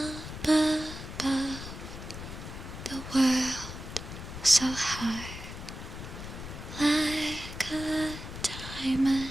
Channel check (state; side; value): noise; left; rumble, 10 dB below the sound